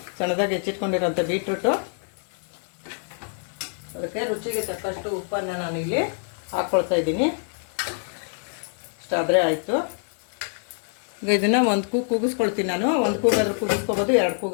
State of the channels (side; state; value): right; silent; 57 dB below the other